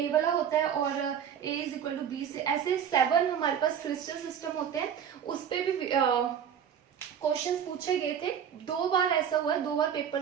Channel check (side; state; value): left; quieter; 8.4 dB